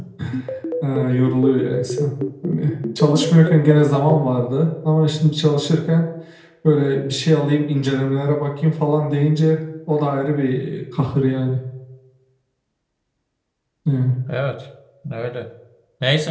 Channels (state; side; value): identical; both; correlation 1.00